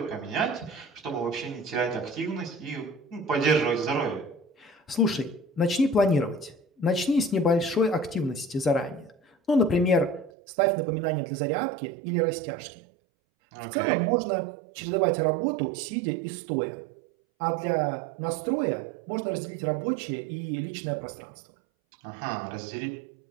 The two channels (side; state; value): left; drops out; at 10.3 s